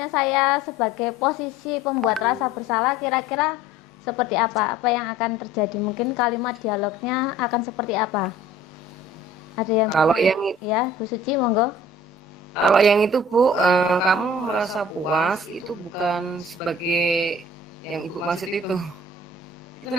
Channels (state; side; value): normal; both; correlation 0.48